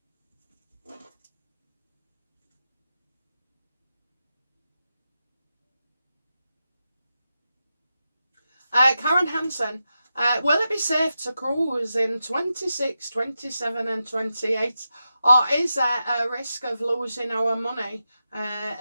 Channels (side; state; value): both; inverted; correlation -0.90